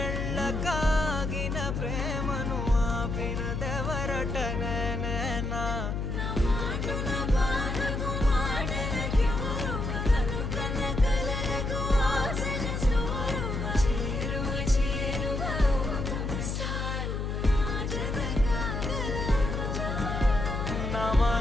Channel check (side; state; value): left; noise; hum, 2 dB below the sound